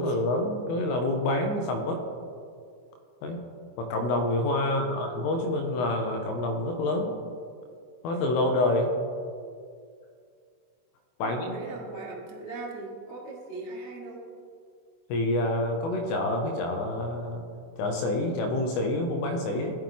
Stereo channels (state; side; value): late; right; 24 ms